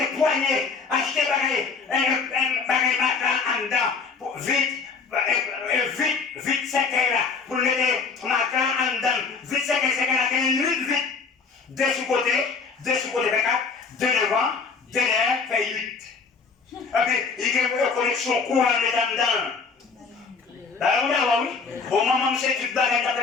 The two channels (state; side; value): quieter; right; 5.0 dB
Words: poigner, acheter un bagage en dedans, vite, c'est là, pour mettre matin en dedans, vite, c'est là, vite, deux sous côté, 24, deux devant. Denye fait 8. Et puis, il y a une connexion courant dedans. D'accord, oui. Bon, maman, c'est tout